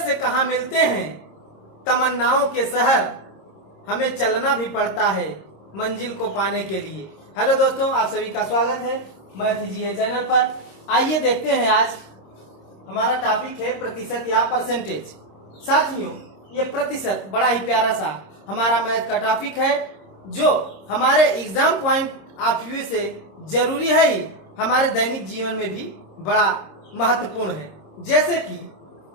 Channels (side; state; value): right; late; 26 ms